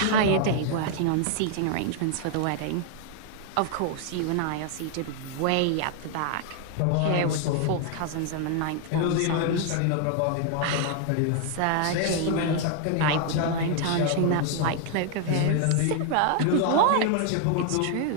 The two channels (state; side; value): different; both; correlation 0.00